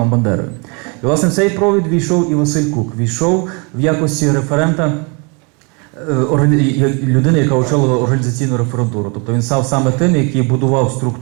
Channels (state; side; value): quieter; left; 32.2 dB